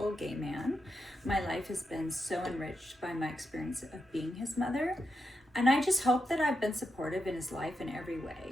gay man. My life has been so enriched by my experience of being his mother, and I just hope that I've been supportive in his life in every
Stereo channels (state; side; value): normal; both; correlation 0.86